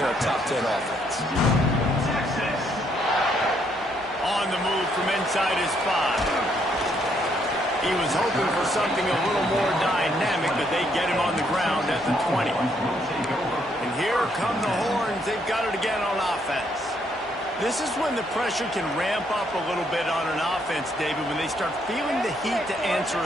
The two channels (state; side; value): normal; both; correlation 0.72